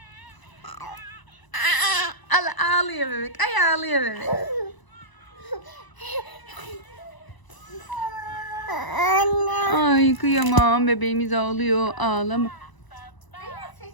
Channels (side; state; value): right; late; 1.0 ms